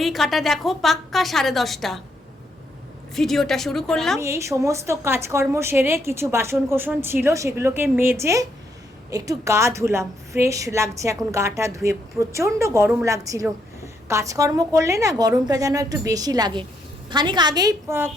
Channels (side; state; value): both; normal; correlation 0.75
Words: কাটা দেখো পাক্কা 10:30। ভিডিওটা শুরু করলাম। আমি এই সমস্ত কাজকর্ম সেরে কিছু বাসন কোসন ছিল সেগুলোকে মেজে একটু গা ধুলাম। ফ্রেশ লাগছে এখন গাটা ধুয়ে, প্রচণ্ড গরম লাগছিল। কাজকর্ম করলে না গরমটা যেন একটু বেশি লাগে। খানিক আগেই